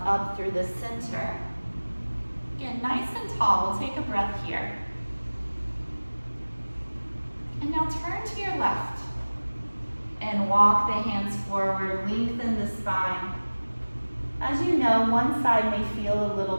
up through the center. Again, nice and tall. We'll take a breath here. And now turn to your left and walk the hands forward, lengthen the spine. As you know, one side may feel a little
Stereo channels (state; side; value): inverted; both; correlation -1.00